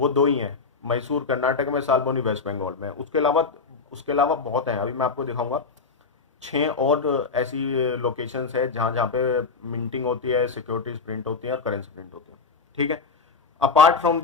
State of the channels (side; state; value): right; quieter; 4.7 dB